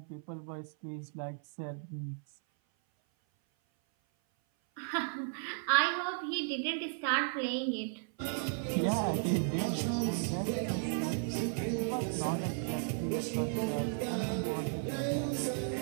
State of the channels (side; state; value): left; silent; 55 dB below the other